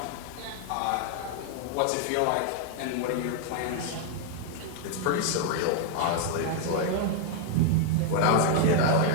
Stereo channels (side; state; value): both; different; correlation 0.00